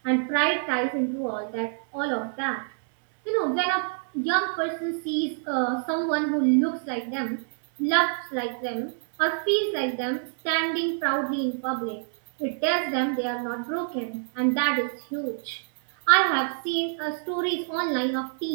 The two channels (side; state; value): left; silent; digital silence